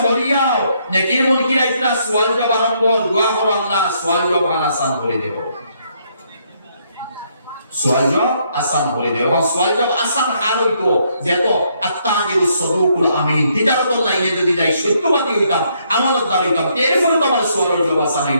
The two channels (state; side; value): inverted; both; correlation -0.72